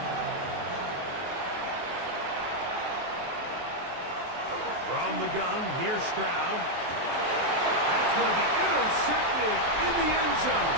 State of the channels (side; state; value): left; late; 23 ms